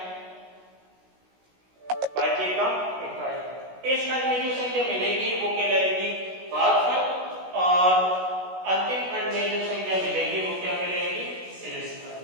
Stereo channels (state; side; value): late; left; 16 ms